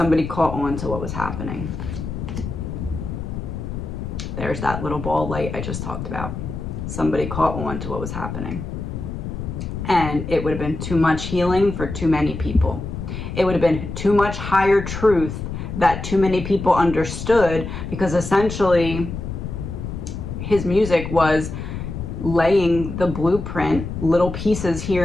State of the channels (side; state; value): left; noise; rumble, 6 dB below the sound